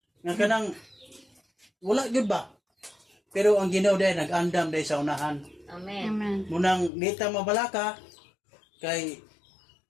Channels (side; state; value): right; drops out; at 6.9 s